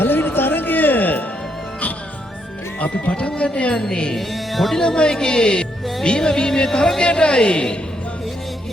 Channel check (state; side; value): normal; both; correlation 0.76